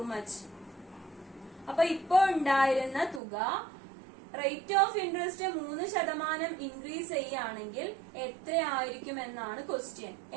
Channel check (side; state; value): left; drops out; at 3.2 s